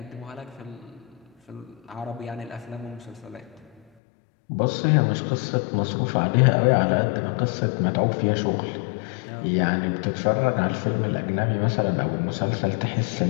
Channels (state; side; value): drops out; right; at 3.8 s